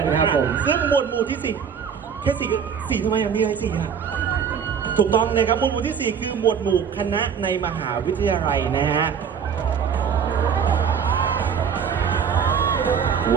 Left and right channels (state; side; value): quieter; left; 7.1 dB